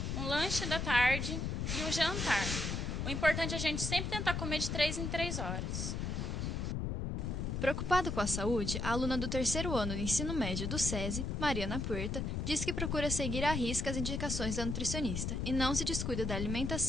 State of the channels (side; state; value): left; noise; rumble, 2 dB below the sound